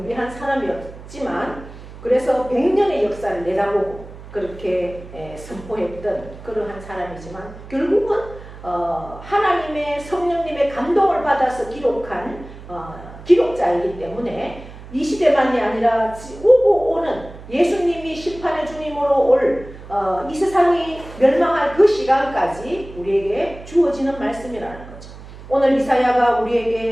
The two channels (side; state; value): right; noise; hum, 16 dB below the sound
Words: 사람이었지만 그래서 100년의 역사를 내다보고 그렇게 선포했던 그러한 사람이지만 결국은 하나님의 성령님의 감동을 받아서 기록한 기록자이기 때문에 이 시대만이 아니라 오고 오는 예수님이 심판의 주님으로 올 이 세상이 멸망할 그 시간까지 우리에게 주어지는 말씀이라는 거죠. 오늘 이사야가